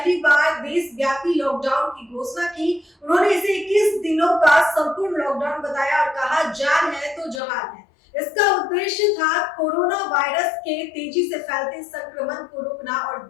बार देशव्यापी लॉकडाउन की घोषणा की। उन्होंने इसे 21 दिनों का संपूर्ण लॉकडाउन बताया और कहा, जान है तो जहान है। इसका उद्देश्य था कोरोना वायरस के तेजी से फैलते संक्रमण को रोकना और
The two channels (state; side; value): drops out; right; at 7.4 s